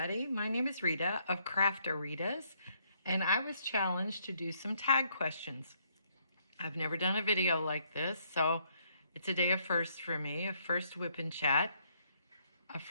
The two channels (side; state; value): both; inverted; correlation -0.70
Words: my name is Rita of Craft-A-Ritas, and I was challenged to do some tag questions. I've never done a video like this, so it's a day of firsts for me, a first whip and chat, a